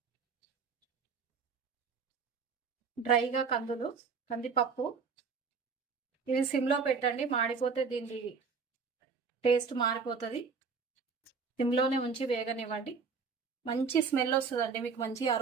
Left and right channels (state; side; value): quieter; left; 5.2 dB